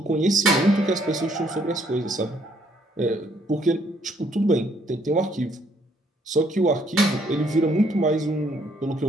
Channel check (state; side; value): normal; both; correlation 0.67